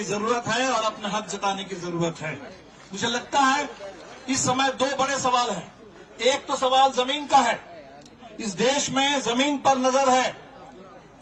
जरूरत है और अपना हक जताने की जरूरत है। मुझे लगता है इस समय 2 बड़े सवाल हैं। एक तो सवाल जमीन का है, इस देश में जमीन पर नजर है,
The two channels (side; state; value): both; identical; correlation 1.00